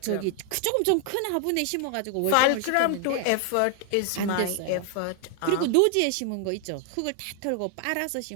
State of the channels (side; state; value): both; different; correlation 0.00